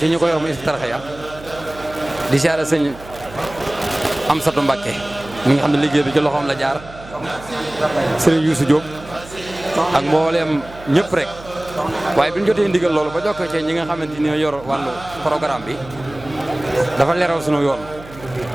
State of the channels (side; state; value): right; noise; hum, 18 dB below the sound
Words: ñu ko yor mu Hizbut-Tarqiyyah di siyaare sëñ Amsatou Mbacké mi nga xam ne liggéey bi ci loxoom la jaar sëriñ Youssou Diop ak mbooleem ñëpp rek waaye bi ñu jotee ndigal loolu ba jokkoo ci ñi nga xamante ni ñoo yor wàllu programme bi dafa leeral sunu yoon